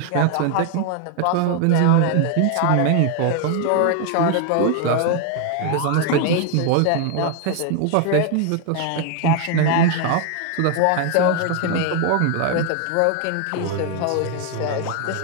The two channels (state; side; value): different; both; correlation 0.01